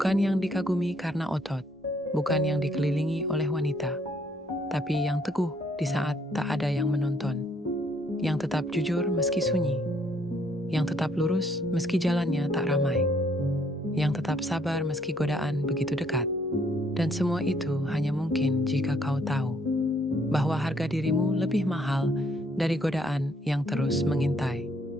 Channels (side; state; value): both; normal; correlation 0.67